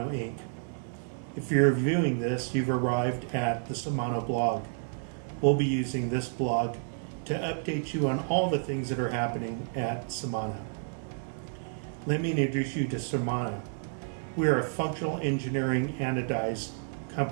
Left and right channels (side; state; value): left; silent; digital silence